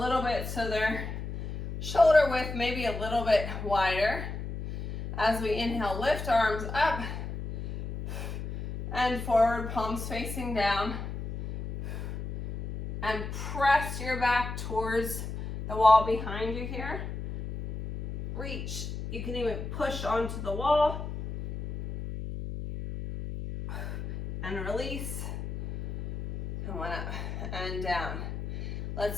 bit so they're shoulder width, maybe a little bit wider. As we inhale, lift arms up and forward, palms facing down. And press your back towards the wall behind you here. Reach. You can even push onto the wall. And release. And one up and down.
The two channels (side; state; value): left; noise; hum, 6 dB below the sound